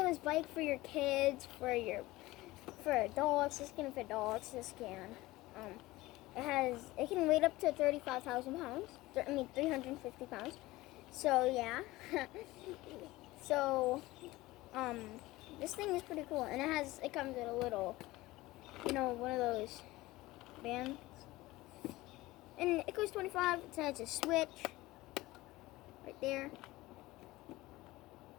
bike for your kids, for adults. This can fit adults. This can, it can weigh up to 35,000 pounds. 350 pounds. So yeah. So, this thing is pretty cool, and it comes with a little, one of those bands. And it costs 25. It has a switch right there.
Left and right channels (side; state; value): right; quieter; 19.0 dB